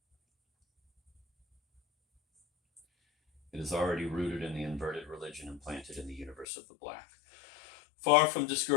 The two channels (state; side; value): drops out; right; at 6.5 s